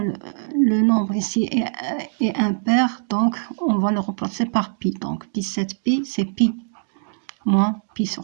le nombre ici est impair, donc on va le remplacer par pi. Donc 17 pi, c'est pi moins pi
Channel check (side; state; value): left; silent; digital silence